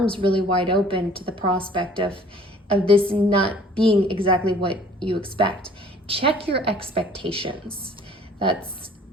really wide open to the prospect of this not being exactly what you expect. Check your expectations. That's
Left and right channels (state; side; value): normal; both; correlation 0.53